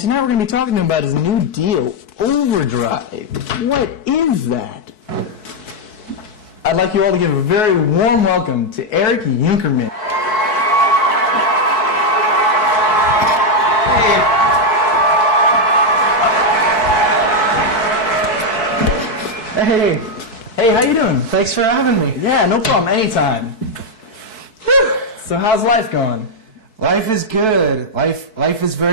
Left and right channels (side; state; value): right; late; 4.6 ms